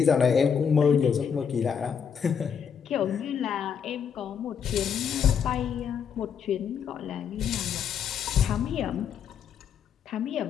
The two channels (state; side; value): quieter; right; 7.4 dB